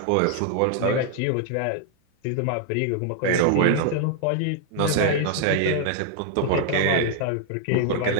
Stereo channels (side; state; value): both; different; correlation 0.00